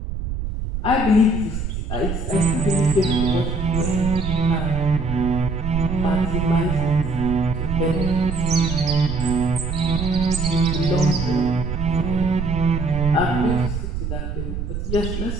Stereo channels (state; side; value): noise; right; rumble, 4 dB below the sound